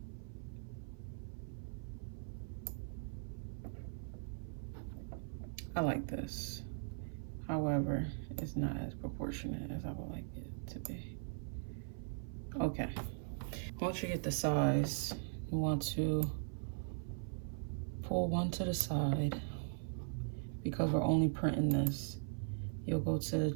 I like this. However, it's not as proportionate as I would like it to be. Okay. Once you get the size, you want to pull one to the side because we're only printing this. You'll go to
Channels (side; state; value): left; silent; 51 dB below the other